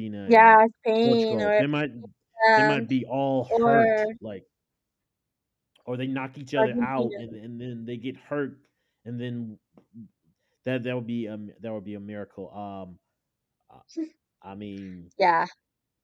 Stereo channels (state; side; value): identical; both; correlation 1.00